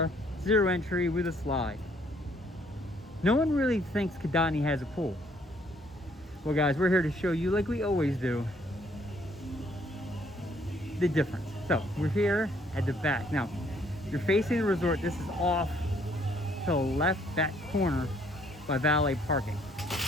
zero entry with a slide. No one really thinks Kindani has a pool. Well guys, we're here to show you, like we always do, the difference. So we're here at the back. Now, you're facing the resort. This is off to the left back corner by valet parking.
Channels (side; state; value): both; normal; correlation 0.65